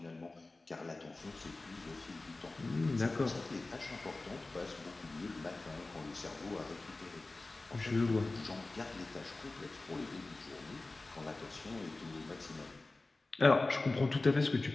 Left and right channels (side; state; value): right; quieter; 3.2 dB